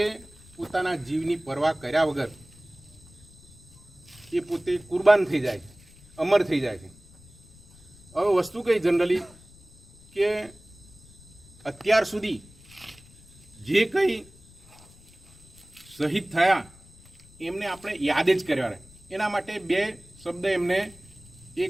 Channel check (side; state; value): left; noise; rumble, 24 dB below the sound